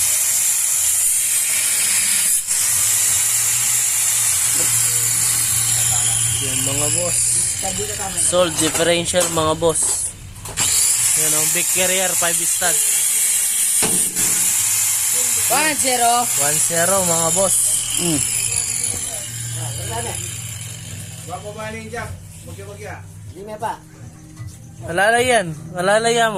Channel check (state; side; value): identical; both; correlation 1.00